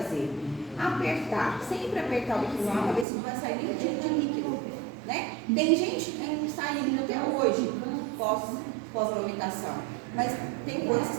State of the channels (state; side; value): drops out; left; at 3.1 s